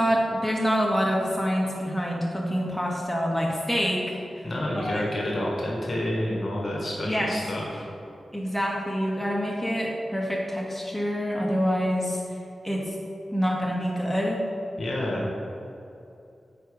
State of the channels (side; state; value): both; normal; correlation 0.94